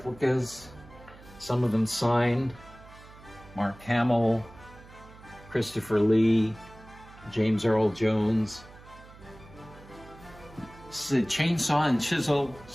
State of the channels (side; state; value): right; noise; hum, 21 dB below the sound